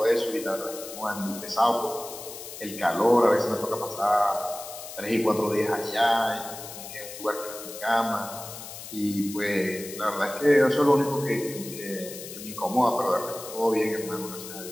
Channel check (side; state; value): left; noise; hiss, 12 dB below the sound